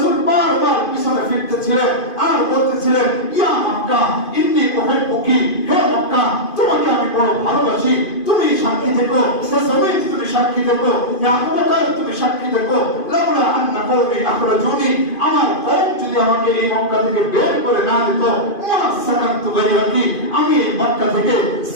বারবার পিছনে ফিরতেছিলেন আর বলতেছিলেন, ইয়া মক্কা ইন্নী উহিব্বুকি, হে মক্কা, তোমাকে আমি বড় ভালোবাসি, তুমি সাক্ষী থেকো, রাসূল তুমি সাক্ষী থেকো, ইয়া আবু বকর তুমি সাক্ষী থেকো, লাউলা আন্না কওমি আখরাজুনি, আমার কওম যদি আমাকে এই মক্কা থেকে বের করে না দিত, মা সাকানতু গায়রাকি, আমি এই মক্কা থেকে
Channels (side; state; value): right; late; 2.5 ms